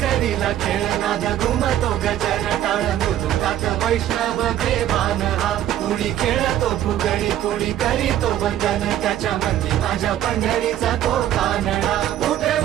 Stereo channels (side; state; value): left; quieter; 12.0 dB